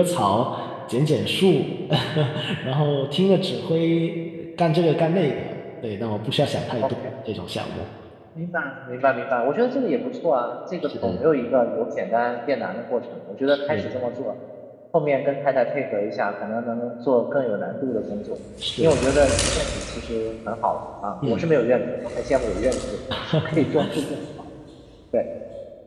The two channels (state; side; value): identical; both; correlation 1.00